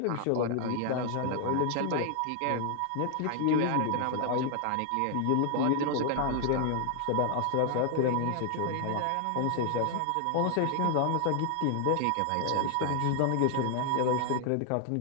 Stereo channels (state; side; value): different; both; correlation 0.00